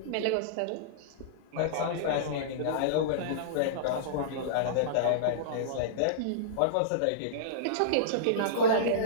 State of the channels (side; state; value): both; different; correlation -0.03